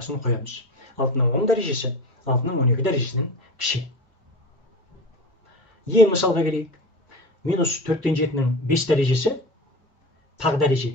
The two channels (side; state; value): both; normal; correlation 0.29